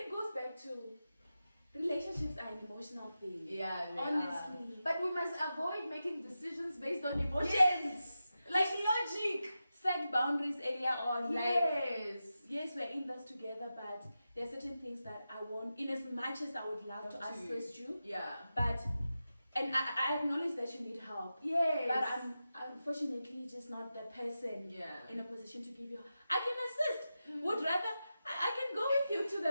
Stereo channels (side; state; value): both; inverted; correlation -0.91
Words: it goes back to relationships are an emotional thing. Yeah, honestly. But we must avoid making decisions based on emotions. Yes. Like logic. Set boundaries earlier on. Yes. Yes, we're in this together, but there are certain things that I want, in as much as I would love to assist you. Yeah. But, and I acknowledge that you need help. Yes. But I'm unfortunately just not the person in a position to give you. I can assist. Would rather, I can go with you to